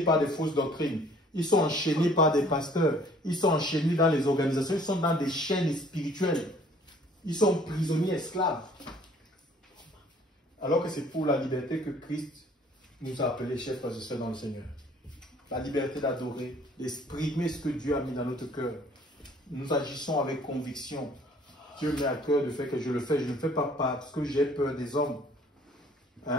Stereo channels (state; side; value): normal; both; correlation 0.56